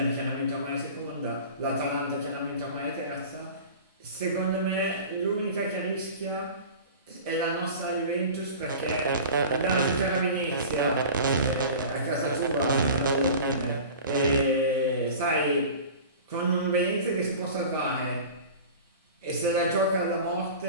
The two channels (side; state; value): both; inverted; correlation -0.37